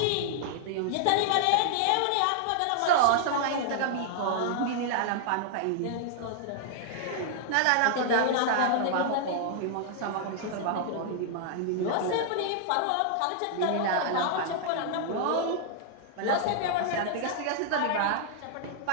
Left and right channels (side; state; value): both; different; correlation -0.01